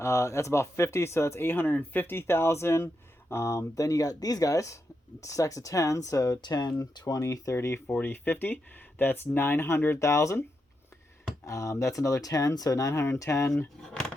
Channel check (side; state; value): both; normal; correlation 0.85